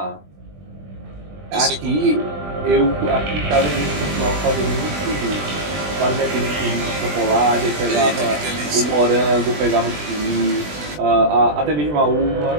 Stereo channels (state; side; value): late; left; 20 ms